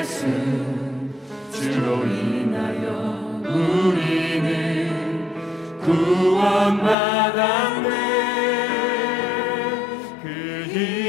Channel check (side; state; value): right; drops out; at 7.0 s